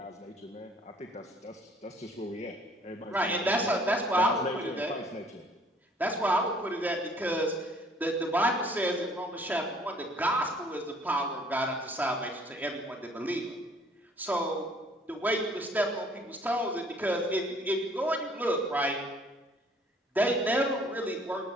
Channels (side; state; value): both; normal; correlation 0.58